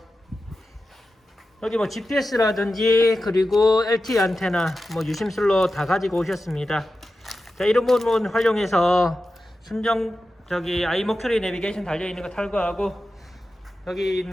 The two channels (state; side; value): normal; both; correlation 0.92